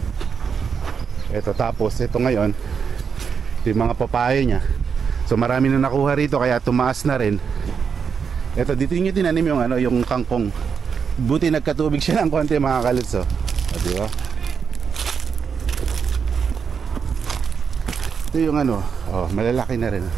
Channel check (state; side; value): quieter; left; 6.4 dB